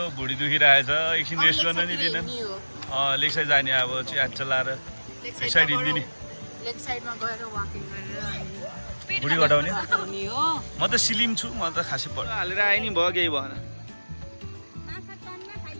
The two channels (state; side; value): inverted; both; correlation -1.00